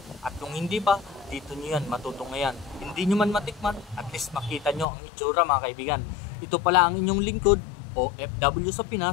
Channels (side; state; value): right; drops out; at 4.9 s